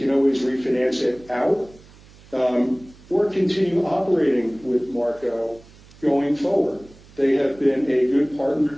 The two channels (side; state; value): right; noise; hum, 24 dB below the sound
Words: always refinance it out or continue operating with Marco going forward. They have been a good partner